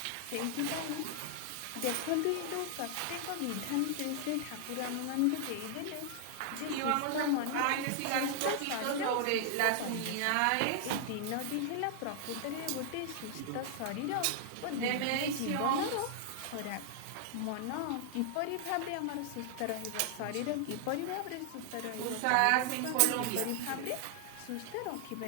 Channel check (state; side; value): different; both; correlation -0.01